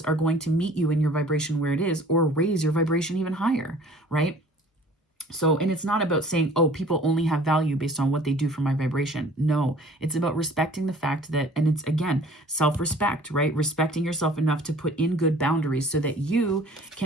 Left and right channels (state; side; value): normal; both; correlation 0.50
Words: are going to meet you in your vibration where it is or raise your vibration even higher, right? So, and it's not about saying, oh, people only have value based on what they do for my vibration. No, it's about respecting the fact that, and it's again, self-respect, right? Respecting yourself enough to put in good boundaries so that you